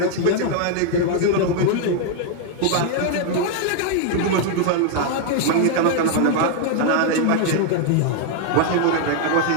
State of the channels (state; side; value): different; both; correlation 0.00